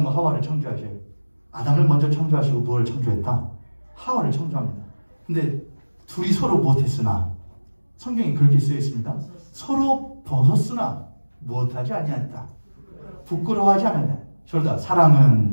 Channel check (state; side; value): inverted; both; correlation -1.00